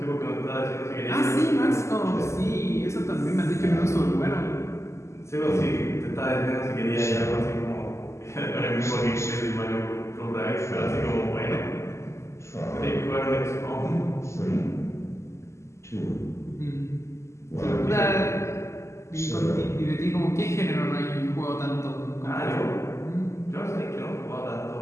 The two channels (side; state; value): right; late; 0.13 ms